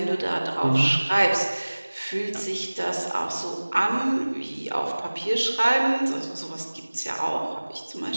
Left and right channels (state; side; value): inverted; both; correlation -1.00